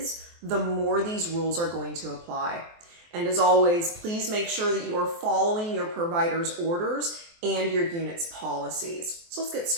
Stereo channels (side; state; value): left; late; 23 ms